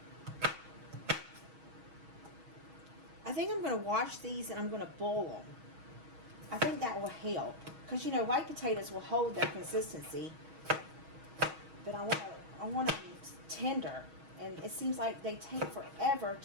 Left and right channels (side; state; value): left; late; 6.3 ms